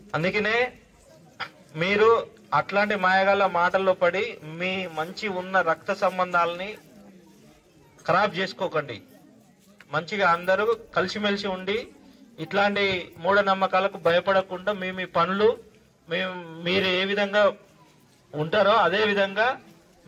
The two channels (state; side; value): identical; both; correlation 1.00